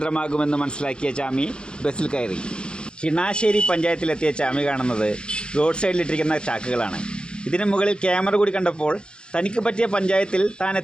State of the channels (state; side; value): late; right; 0.051 ms